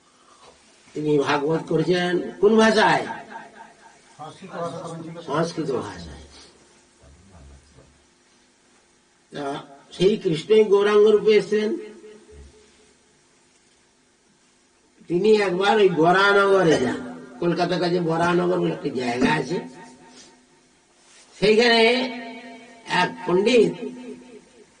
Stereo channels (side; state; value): both; identical; correlation 1.00